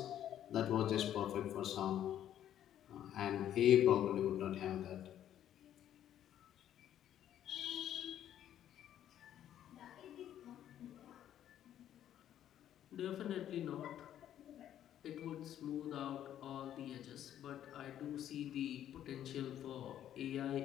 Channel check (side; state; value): right; quieter; 11.0 dB